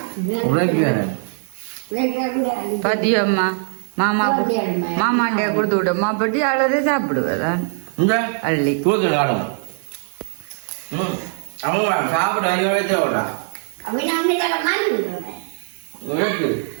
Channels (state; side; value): silent; left; 65 dB below the other